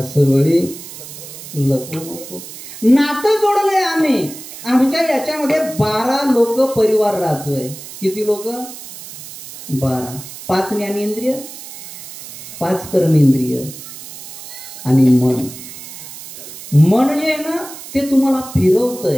सवळी लपू नको. नातं जोडलंय आम्ही. आमच्या याच्यामध्ये 12 लोक परिवार राहतोय. किती लोक? 12. 5 ज्ञानेंद्रिय, 5 कर्मेंद्रिय आणि मन. मन जे आहे ना ते तुम्हाला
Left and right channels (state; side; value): noise; right; hiss, 14 dB below the sound